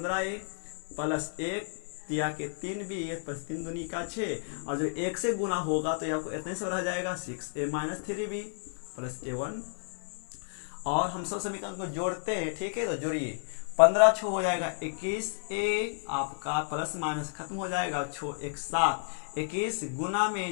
प्लस 1 तिया के 3b प्लस 3 दूनी का 6, और जो 1 से गुना होगा तो आपको इतने से रह जाएगा 6a minus 3b plus a1। और हम सब समीकरण को जोड़ते हैं, ठीक है। तो जोड़िए, 15 छो हो जाएगा 21a आपका, प्लस माइनस खत्म हो जाएगा, छो 1 7, 21 गुना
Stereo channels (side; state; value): right; silent; 57 dB below the other